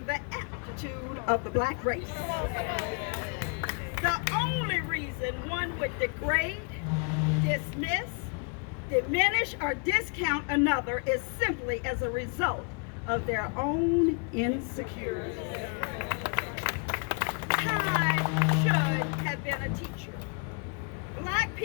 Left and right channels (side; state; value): right; quieter; 37.9 dB